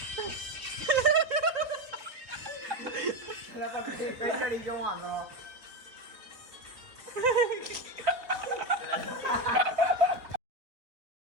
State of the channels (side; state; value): left; late; 3.9 ms